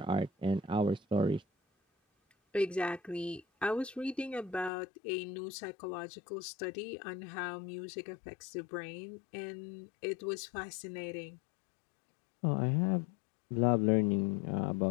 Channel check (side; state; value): right; drops out; at 4.7 s